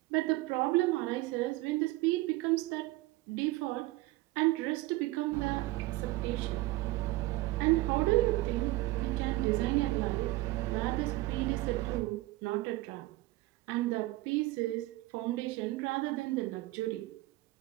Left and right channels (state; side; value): quieter; left; 19.2 dB